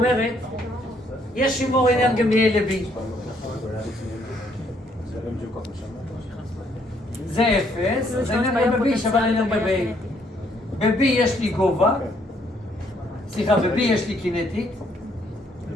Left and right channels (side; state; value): both; normal; correlation 0.69